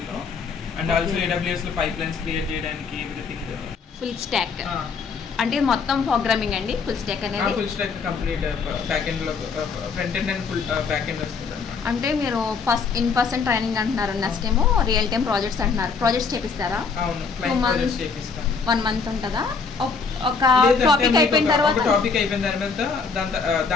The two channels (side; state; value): right; quieter; 5.2 dB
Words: అండ్ ఆల్సో AWS లో పైప్ లైన్స్ క్రియేట్ చేయడానికి ఎవ్రీథింగ్ ఫుల్ స్టాక్. అంటే మొత్తం ప్రోగ్రామింగ్ అండి ఫుల్ స్టాక్ అనేది? Full stack complete back end లో front end and full back end వస్తుంది. అంటే మీరు ఇన్ పర్సన్ ట్రైనింగ్ అంటున్నారు, నెక్స్ట్ ఏమో రియల్ టైమ్ ప్రాజెక్ట్స్ అంటున్నారు. ప్రాజెక్ట్స్ చేపిస్తారా? అవును, 1 month ఉంటుందా? ఒక టాపిక్ అయిపోయిన తర్వాత